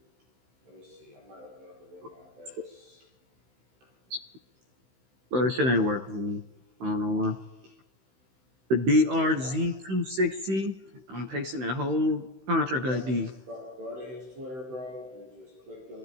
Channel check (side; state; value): left; late; 16 ms